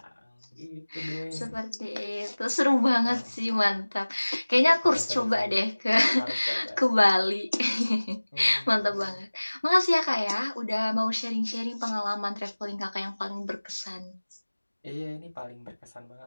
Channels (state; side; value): inverted; both; correlation -1.00